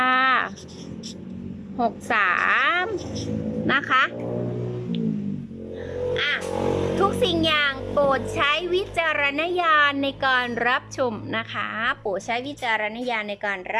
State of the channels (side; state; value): both; identical; correlation 1.00